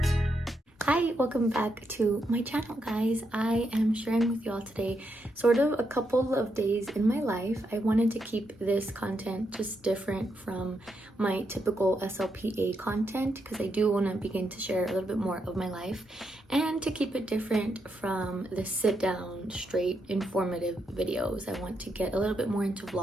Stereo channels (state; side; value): normal; both; correlation 0.81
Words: Hi, welcome back to my channel, guys. I am sharing with y'all today sort of a couple of days in my life. I wanted to keep this content just different from my typical SLPA content because I do want to begin to share a little bit more of my life and to keep it different from the sit down, straight, informative videos. I want to get a little bit more into